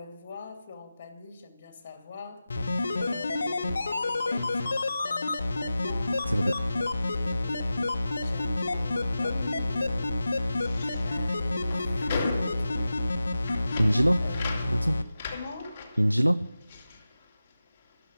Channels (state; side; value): inverted; both; correlation -0.94